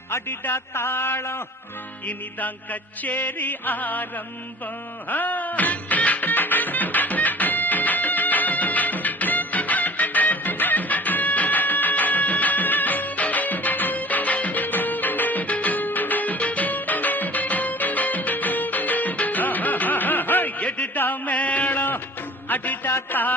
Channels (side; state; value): both; normal; correlation 0.44